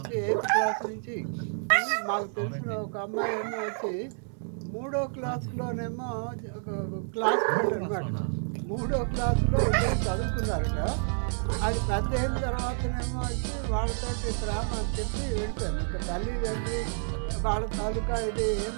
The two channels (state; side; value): silent; left; 58 dB below the other